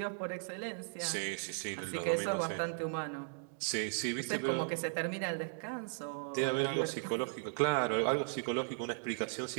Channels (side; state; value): left; silent; digital silence